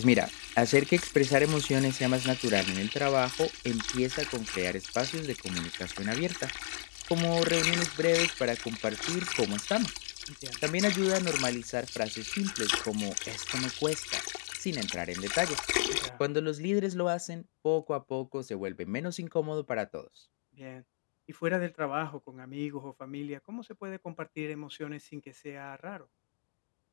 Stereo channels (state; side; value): silent; right; digital silence